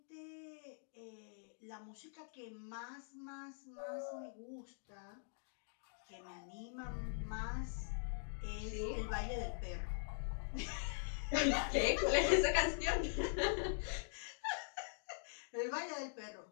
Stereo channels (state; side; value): silent; right; digital silence